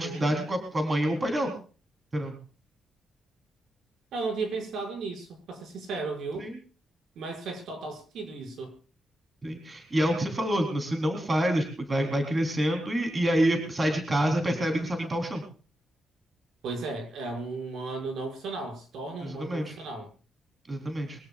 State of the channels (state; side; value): normal; both; correlation 0.87